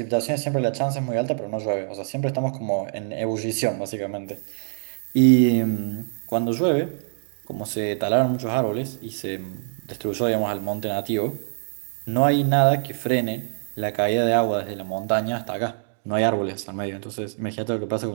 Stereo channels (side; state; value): left; silent; digital silence